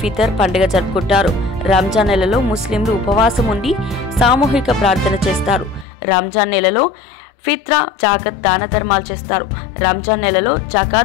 ఫితర్ పండుగ జరుపుకుంటారు. రంజాన్ నెలలో ముస్లింలు ఉపవాసం ఉండి సామూహిక ప్రార్థన చేస్తారు. రంజాన్ నెలలో ఫిత్రా, జాకత్ దాన ధర్మాలు చేస్తారు. రంజాన్ నెలలో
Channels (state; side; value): drops out; right; at 5.9 s